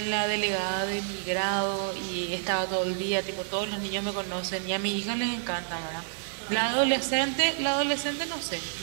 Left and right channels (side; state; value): left; silent; digital silence